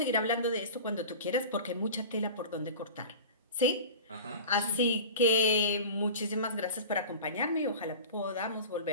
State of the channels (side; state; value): both; inverted; correlation -0.35